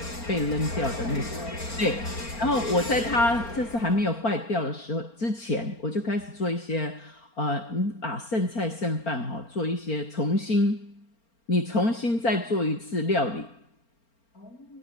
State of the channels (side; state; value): right; late; 4.4 ms